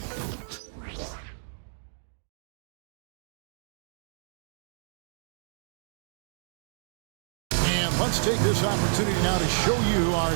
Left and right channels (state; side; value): silent; left; digital silence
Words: And let's take this opportunity now to show you